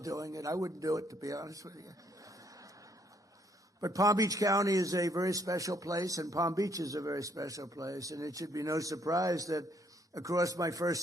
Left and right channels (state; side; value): normal; both; correlation 0.69